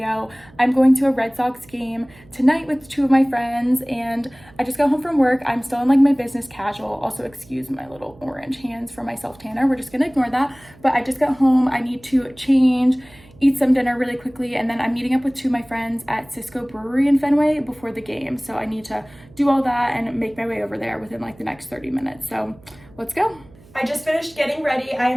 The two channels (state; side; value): noise; right; hum, 25 dB below the sound